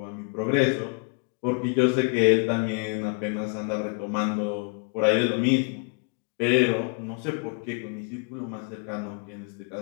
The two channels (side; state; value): right; quieter; 38.3 dB